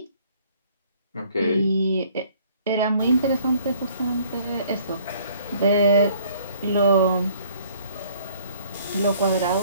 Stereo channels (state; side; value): inverted; both; correlation -0.58